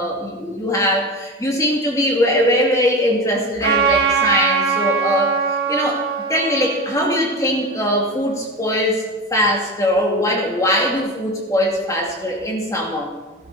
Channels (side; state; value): both; normal; correlation 0.26